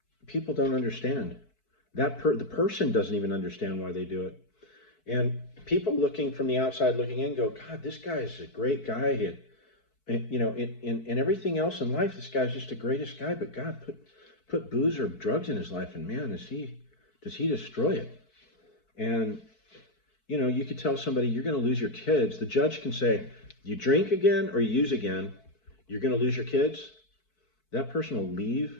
People don't understand that. The person doesn't even understand why they do it. And people looking from the outside looking in go, God, this guy is a great guy. And in everything else in life, this guy's just the greatest guy. But God put booze or drugs in his life, and man, does he destroy it. And you could tell somebody you're going to lose your kids. The judge can say, you drink again or you use again, you're going to lose your kids. That person will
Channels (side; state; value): right; late; 4.6 ms